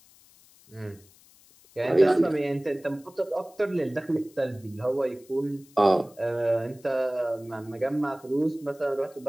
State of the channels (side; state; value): left; noise; hiss, 27 dB below the sound